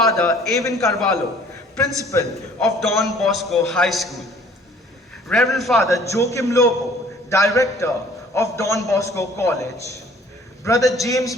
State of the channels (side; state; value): both; normal; correlation 0.54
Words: Avin Carvalho, principal of Don Bosco High School. Reverend Father Joachim Lobo, director of Don Bosco College. Brother